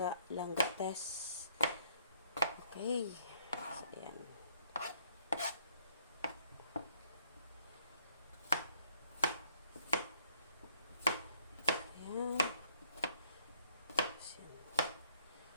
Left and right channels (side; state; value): both; inverted; correlation -0.67